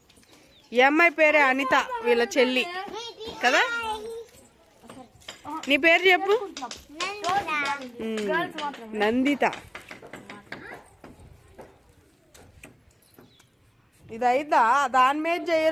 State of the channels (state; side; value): identical; both; correlation 1.00